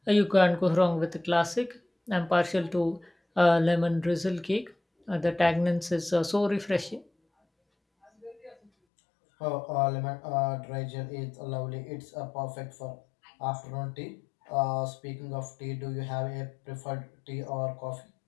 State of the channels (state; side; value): drops out; right; at 8.7 s